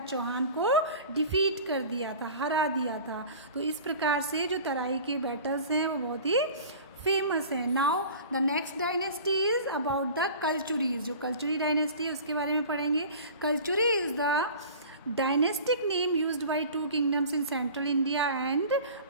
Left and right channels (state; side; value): inverted; both; correlation -0.41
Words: चौहान को डिफीट कर दिया था, हरा दिया था. तो इस प्रकार से जो तराई के बैटल्स हैं वो बहुत ही फेमस है. Now the next dynasty is about the Kalchuris. जो कल्चुरी डायनेस्टी है उसके बारे में पढ़ेंगे. Kalchuri is the dynastic name used by 2 kingdoms in central India and